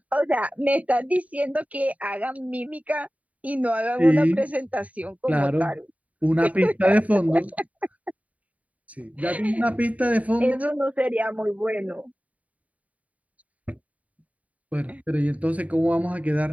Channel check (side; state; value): left; late; 0.069 ms